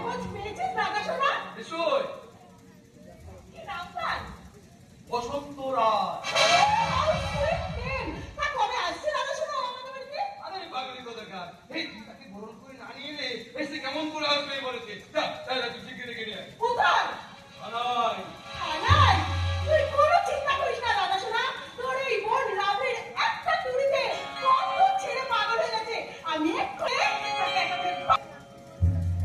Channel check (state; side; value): identical; both; correlation 1.00